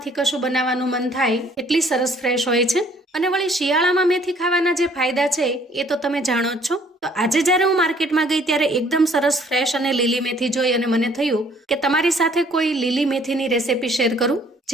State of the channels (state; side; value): normal; both; correlation 0.60